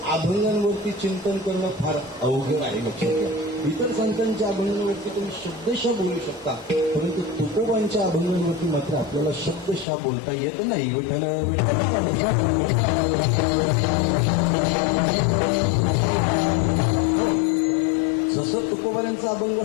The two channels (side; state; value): right; drops out; at 9.9 s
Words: अभंगांवरती चिंतन करणं फार अवघड आहे. लक्षात घ्या. इतर संतांच्या अभंगांवरती तुम्ही शब्दशः बोलू शकता परंतु तुकोबांच्या अभंगांवरती मात्र आपल्याला शब्दशः बोलता येत नाही. जसं तुकोबांचा अभंग